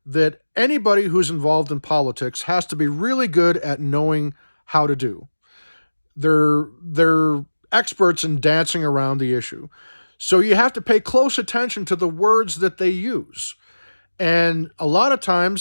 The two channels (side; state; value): both; inverted; correlation -1.00